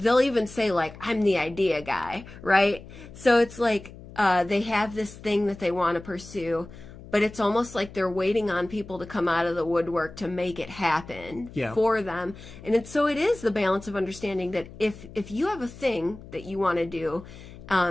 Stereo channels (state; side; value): noise; left; hum, 17 dB below the sound